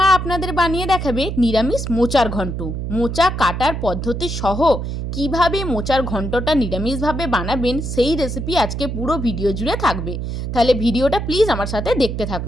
আপনাদের বানিয়ে দেখাবে নিরামিষ মোচার ঘন্ট। মোচা কাটার পদ্ধতি সহ কিভাবে মোচার ঘন্টটা নিরামিষভাবে বানাবেন সেই রেসিপি আজকে পুরো ভিডিও জুড়ে থাকবে। তাহলে ভিডিওটা প্লিজ আমার সাথে দেখতে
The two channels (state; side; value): noise; right; hum, 4 dB below the sound